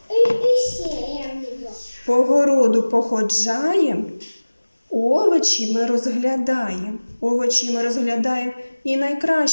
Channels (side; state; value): both; inverted; correlation -1.00